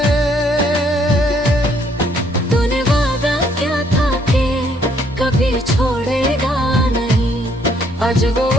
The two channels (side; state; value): both; normal; correlation 0.67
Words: तूने वादा क्या था कि कभी छोड़ेगा नहीं, आज वो